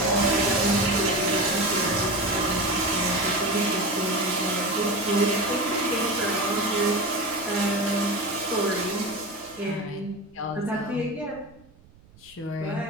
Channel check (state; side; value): noise; right; rumble, 27 dB below the sound